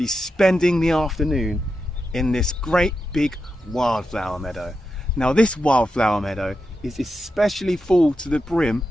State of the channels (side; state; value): both; normal; correlation 0.88